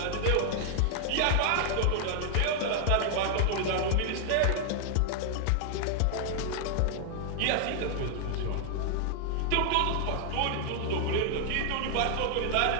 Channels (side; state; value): both; different; correlation 0.00